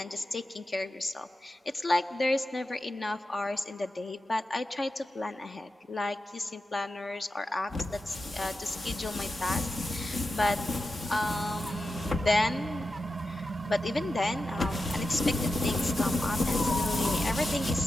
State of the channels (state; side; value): normal; both; correlation 0.91